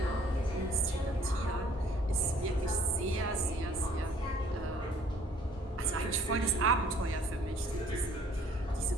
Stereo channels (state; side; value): normal; both; correlation 0.58